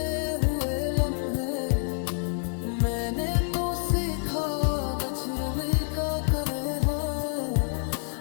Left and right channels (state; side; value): silent; right; 58 dB below the other